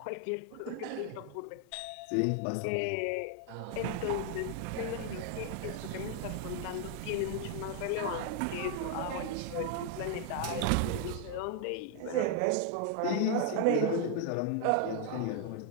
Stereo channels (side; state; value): both; different; correlation 0.00